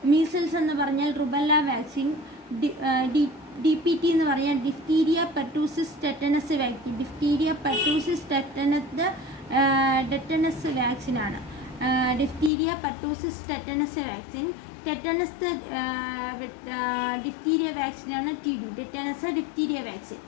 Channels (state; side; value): drops out; right; at 12.5 s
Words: Measles എന്ന് പറഞ്ഞാൽ റുബല്ല വാക്സിൻ. DPT എന്ന് പറഞ്ഞാൽ diphtheria pertussis tetanus vaccine. Diphtheria pertussis tetanus വാക്സിനാണ്. Diphtheria pertussis tetanus vaccine. Tetanus diphtheria വാക്സിനാണ് TD. Tetanus diphtheria vaccine.